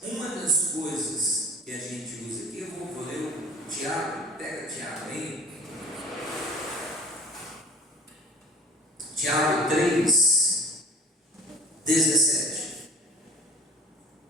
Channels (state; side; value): normal; both; correlation 0.44